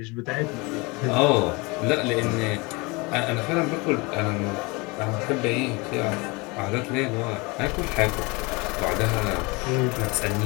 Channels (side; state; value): right; quieter; 26.6 dB